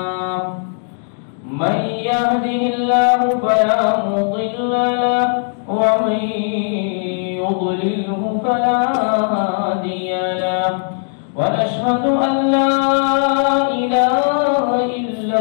من يهده الله فلا مضل له ومن يضلله فلا هادي له ونشهد أن لا إله إلا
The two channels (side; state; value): right; silent; digital silence